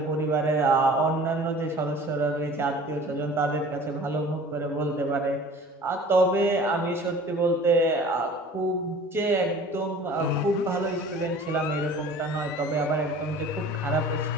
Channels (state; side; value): normal; both; correlation 0.45